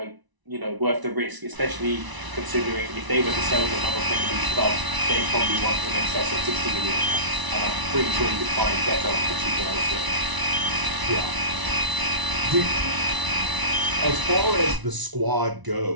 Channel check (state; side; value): late; left; 1.0 ms